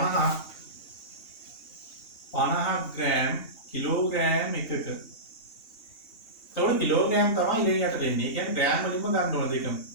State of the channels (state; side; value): late; right; 2.8 ms